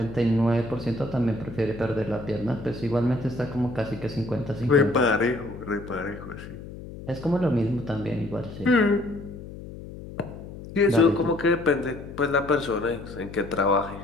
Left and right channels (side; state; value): left; noise; hum, 13 dB below the sound